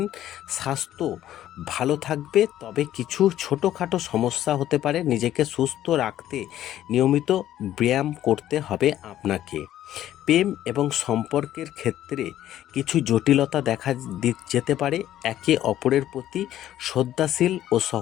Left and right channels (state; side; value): quieter; right; 12.5 dB